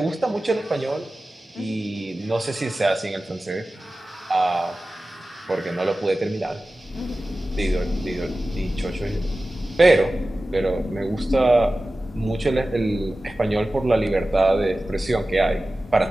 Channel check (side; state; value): both; normal; correlation 0.95